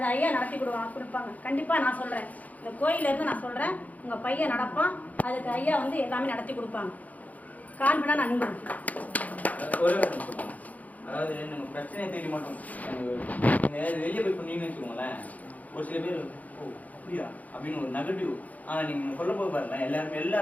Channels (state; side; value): late; right; 0.076 ms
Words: ஐயா நடத்தி கொடுப்பாங்க. கண்டிப்பா நான் சொல்றேன், இந்த கோயில இருந்து நான் சொல்றேன், உங்க பையன் நடப்பான். அதுக்கு ஐயா வந்து எல்லாமே நடத்தி கொடுப்பாங்க. கான்பிடா நான் நம்புறேன். அதாவது நம்ம பிரச்சனையை தேடி மாட்டோம். வெளியே போய் பண்ணீங்கன்னு வச்சுக்கோங்களேன், ஒரு சில பேர் ஓ அப்படியா அப்படின்னு ஒரு நெகட்டிவ். ஆனா நீங்க சொல்ல போது பாருங்க,